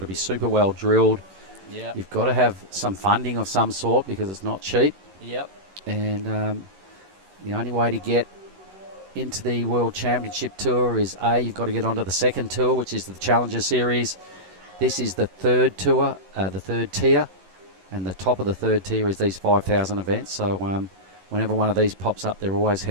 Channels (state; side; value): late; left; 11 ms